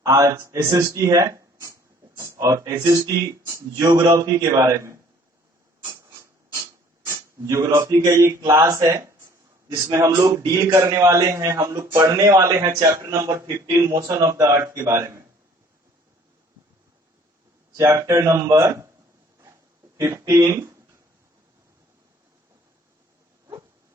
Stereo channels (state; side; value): normal; both; correlation 0.56